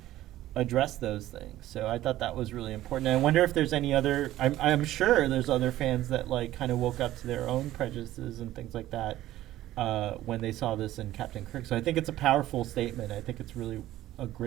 address those things. So I thought that was really important. And I wonder if there's any other. I'm sure there's other fans that like kind of woke up to their own prejudices and things like that when they saw this in Captain Kirk. So I think it's a powerful statement. I think it's really a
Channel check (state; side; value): quieter; left; 14.6 dB